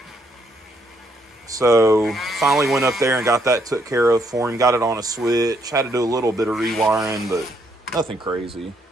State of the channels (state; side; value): normal; both; correlation 0.73